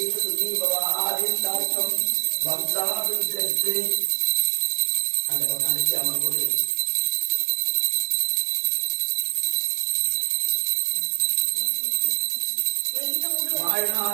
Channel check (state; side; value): silent; left; digital silence